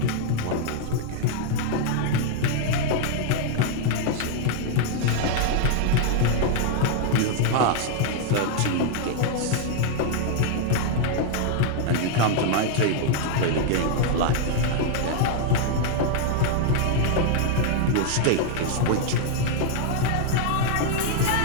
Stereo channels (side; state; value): both; different; correlation 0.00